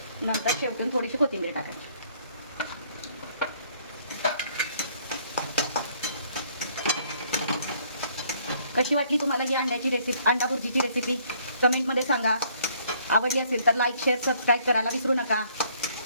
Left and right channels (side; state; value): both; inverted; correlation -0.63